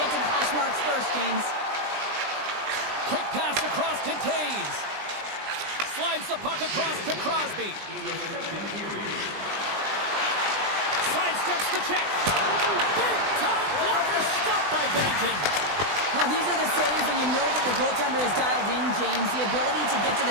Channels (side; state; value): left; late; 20 ms